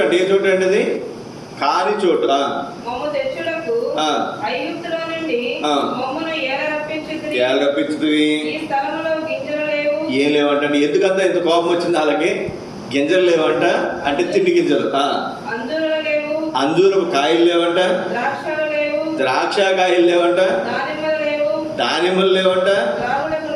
అంటే ఏ చోటు అండి? అది కాని చోటు. మమ్ము తెచ్చుటకు ఐగుప్తులో నుండి మమ్మును ఏల రప్పించుతుంది. ఈ స్థలములో గింజలు లేవు. ఏం లేవంట. ఎందుకంతా ఇంత కోపం వచ్చింది వాళ్ళకి? గింజలు లేవంట అంటే తిండి గింజలు. అంజూరలు లేవు. అంజూరపు కాయలు లేవంట. ద్రాక్షలు లేవు. ద్రాక్ష కాయలు లేవంట. దానిమ్మలు లేవు. దానిమ్మలు లేవంట. త్రాగుటకు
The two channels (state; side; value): identical; both; correlation 1.00